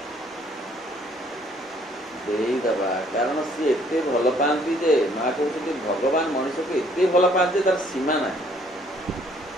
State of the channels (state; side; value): normal; both; correlation 0.63